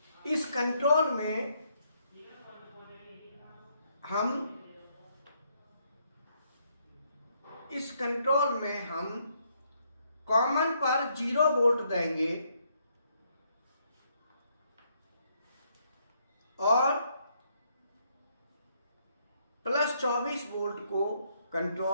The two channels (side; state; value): both; inverted; correlation -0.73